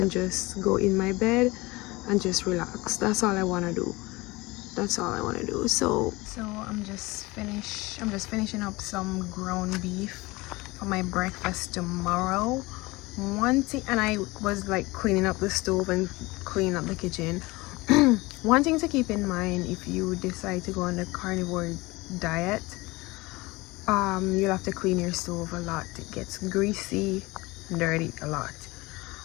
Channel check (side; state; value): right; quieter; 22.3 dB